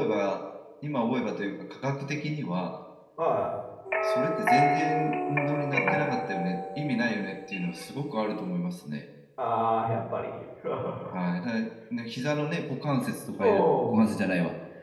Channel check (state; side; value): identical; both; correlation 1.00